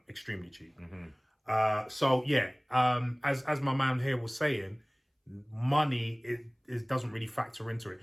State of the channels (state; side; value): identical; both; correlation 1.00